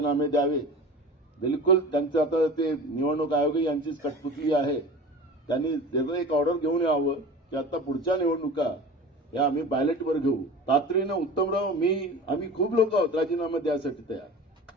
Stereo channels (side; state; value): both; normal; correlation 0.36